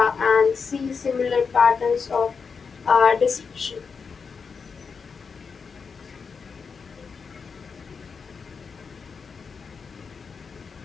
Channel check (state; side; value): quieter; right; 5.5 dB